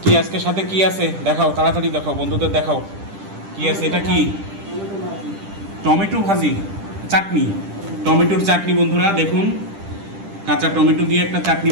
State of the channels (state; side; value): late; left; 10 ms